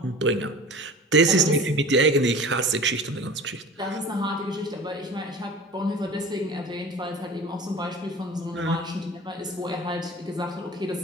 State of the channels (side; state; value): both; normal; correlation 0.39